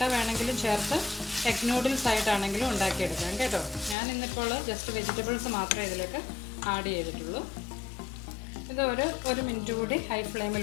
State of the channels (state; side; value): drops out; right; at 4.0 s